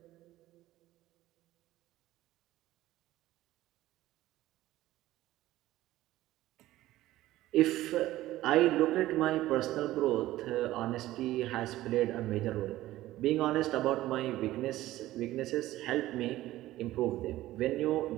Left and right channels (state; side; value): quieter; left; 15.7 dB